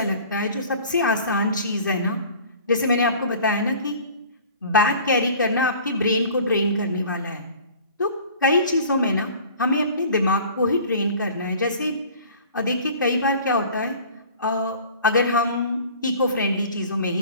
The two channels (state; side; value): inverted; both; correlation -0.46